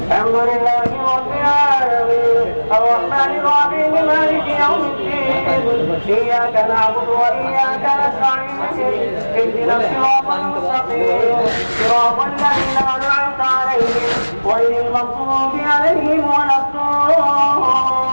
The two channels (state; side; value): inverted; both; correlation -1.00